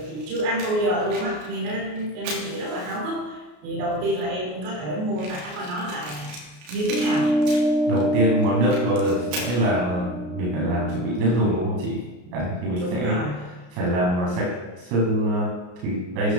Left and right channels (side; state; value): left; late; 33 ms